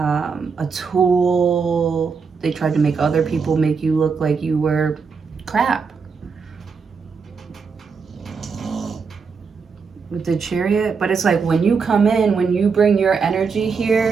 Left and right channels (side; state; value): left; quieter; 5.4 dB